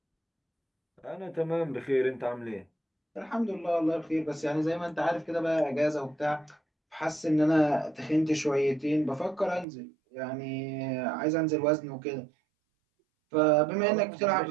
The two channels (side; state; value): left; drops out; at 9.7 s